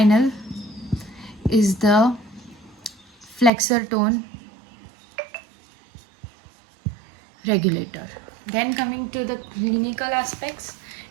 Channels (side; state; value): left; drops out; at 3.5 s